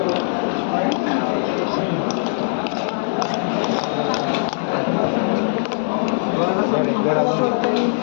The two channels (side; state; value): right; silent; digital silence